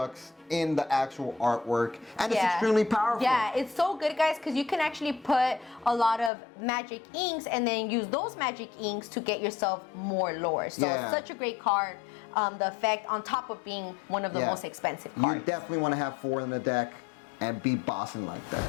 in the actual artwork, and it's extremely powerful. Yeah, it's so good guys because you can actually put a lot of magic inks and then use those magic inks to get yourself more lore. So it's such a great card. The effect on top of being one of the most expensive cards. You definitely want to have 4 in the deck and be bossing like that.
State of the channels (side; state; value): right; drops out; at 6.3 s